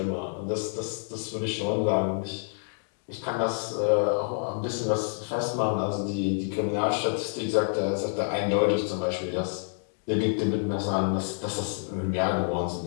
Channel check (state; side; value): silent; right; 56 dB below the other